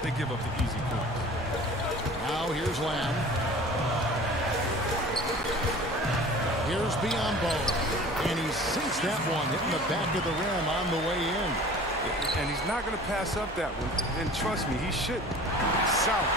They give up the easy points. now. Here's Lamb. Here's Biombo. And he sinks that one, hitting the back of the rim on the way in. And he's not going to pass up that one. And trust me, he shouldn't. South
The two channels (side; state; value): right; noise; hum, 17 dB below the sound